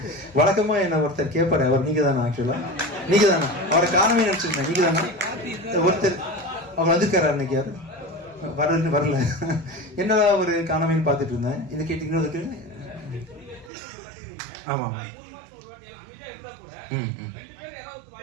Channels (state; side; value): drops out; left; at 13.7 s